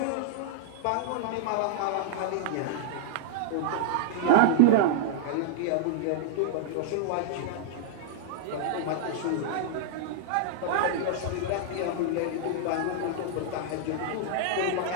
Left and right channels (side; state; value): both; different; correlation -0.01